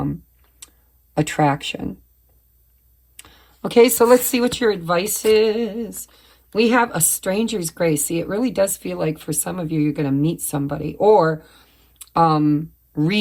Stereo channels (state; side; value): identical; both; correlation 1.00